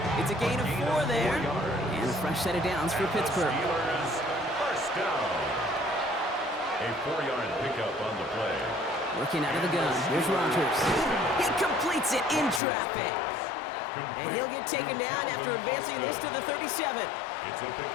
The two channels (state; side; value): drops out; right; at 12.6 s